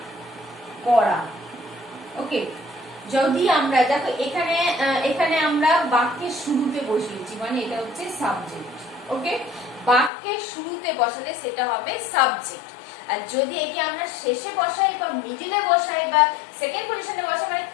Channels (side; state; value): right; drops out; at 10.1 s